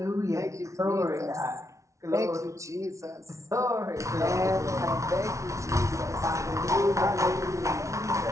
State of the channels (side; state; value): left; late; 0.14 ms